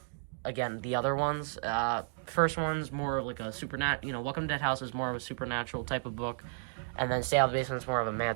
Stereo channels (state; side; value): silent; left; digital silence